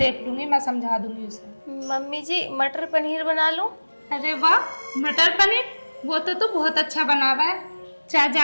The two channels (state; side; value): inverted; both; correlation -1.00